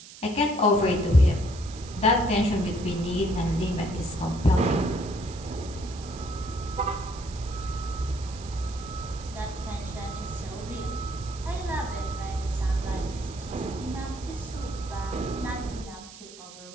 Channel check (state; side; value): noise; right; hiss, 17 dB below the sound